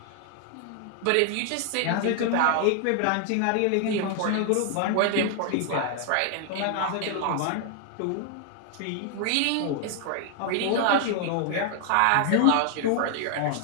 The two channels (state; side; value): different; both; correlation 0.00